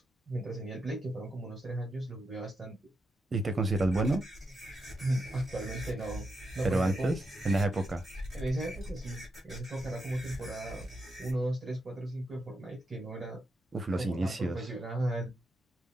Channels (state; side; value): normal; both; correlation 0.84